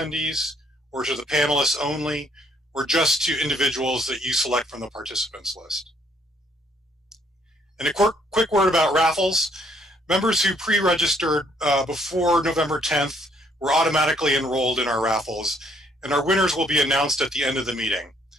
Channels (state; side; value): normal; both; correlation 0.67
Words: or to the panelists only, or just to individuals that you select from the participants list. And a quick word about raffles. Members who pre-registered before November 10th were automatically enrolled in our raffles, and our winners will be announced at the end of the meeting.